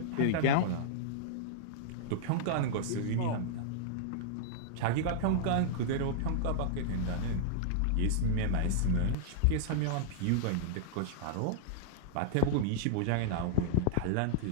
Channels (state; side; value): different; both; correlation -0.02